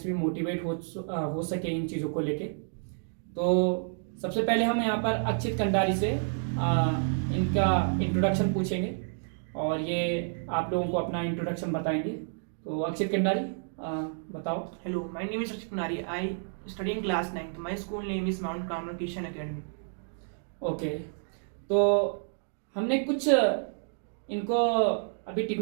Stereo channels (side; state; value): left; silent; digital silence